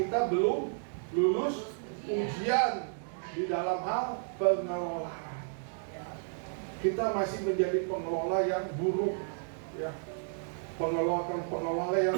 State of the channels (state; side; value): silent; left; digital silence